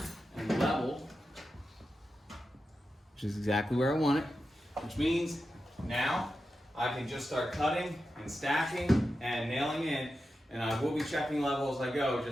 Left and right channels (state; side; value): normal; both; correlation 0.90